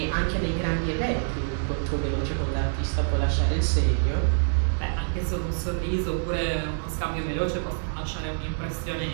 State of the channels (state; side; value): silent; left; digital silence